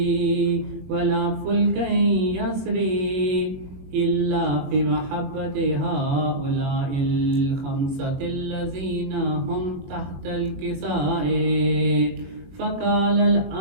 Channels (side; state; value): left; late; 22 ms